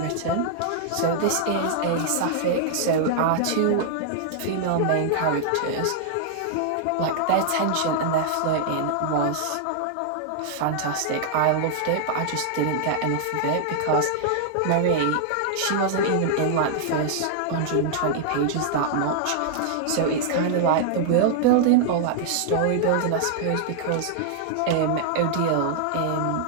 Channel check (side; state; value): both; different; correlation -0.01